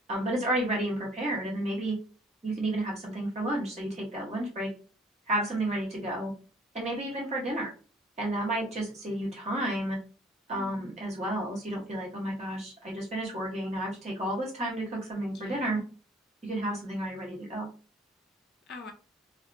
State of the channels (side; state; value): both; normal; correlation 0.56